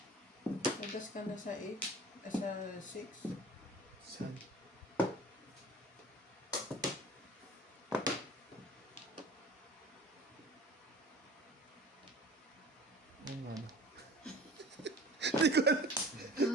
Nagas ka na sa 8? Sa 6? Sad. Ano ano? Hindi ko alam.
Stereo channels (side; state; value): both; normal; correlation 0.42